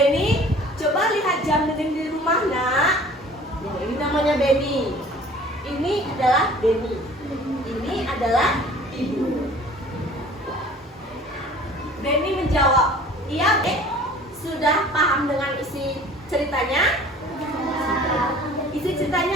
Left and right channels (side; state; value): both; normal; correlation 0.48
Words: coba lihat jam dinding di rumah nak. Nah, ini namanya Beni. Ini adalah Beni. Ini adalah ibu. Beni menjawab, iya sudah paham dengan isi ceritanya? Isi